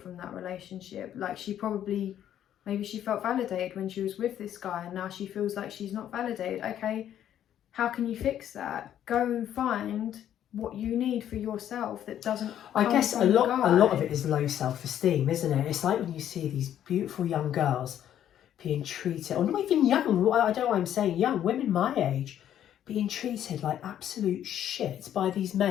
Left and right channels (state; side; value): quieter; right; 10.7 dB